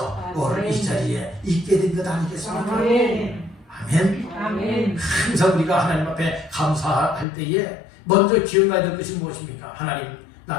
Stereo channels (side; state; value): right; drops out; at 7.2 s